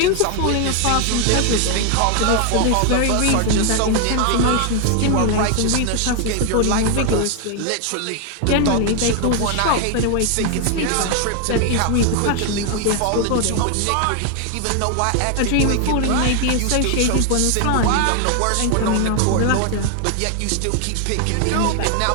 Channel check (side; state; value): both; different; correlation 0.01